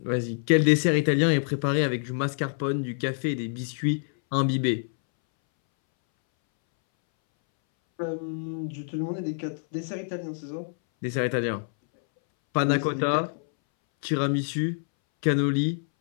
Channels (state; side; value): silent; right; 61 dB below the other